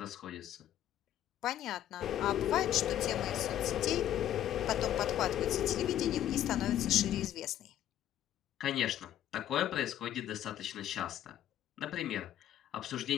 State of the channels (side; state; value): right; quieter; 11.7 dB